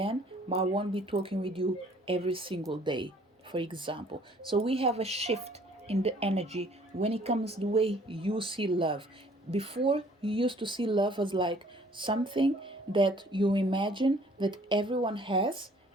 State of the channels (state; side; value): normal; both; correlation 0.57